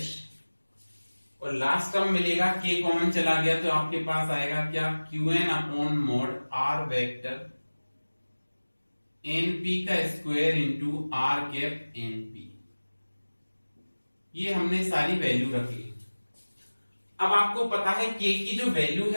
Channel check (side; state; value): both; inverted; correlation -1.00